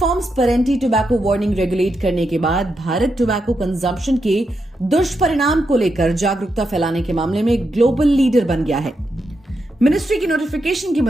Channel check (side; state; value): both; normal; correlation 0.84